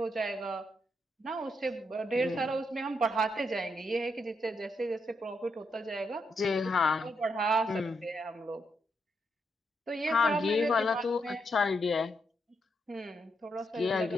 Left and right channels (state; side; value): normal; both; correlation 0.79